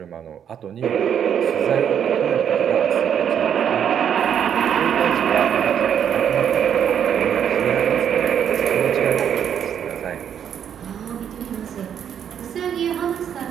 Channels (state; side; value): quieter; left; 8.7 dB